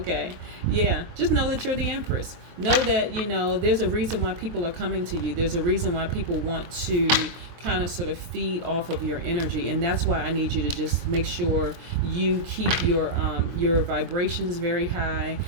Yeah. Just know that you're the Empress. Know that, there's a reason why people are coming to you. There's a reason why people want to kind of sort of feed off of your energy. And that's why I need you to just make sure you keep your vibrations very high.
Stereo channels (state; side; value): late; left; 23 ms